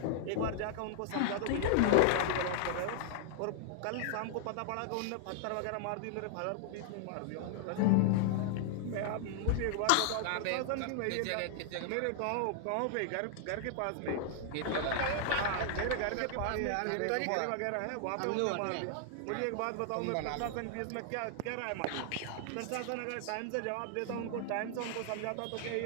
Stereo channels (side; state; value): both; different; correlation -0.01